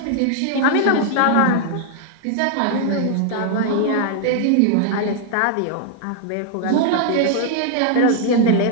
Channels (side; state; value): both; different; correlation 0.00